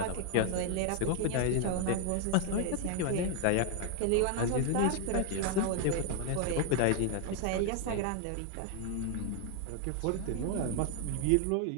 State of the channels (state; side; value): different; both; correlation 0.00